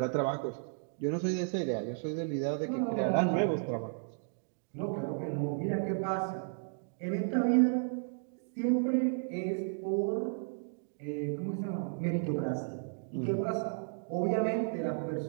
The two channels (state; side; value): silent; left; digital silence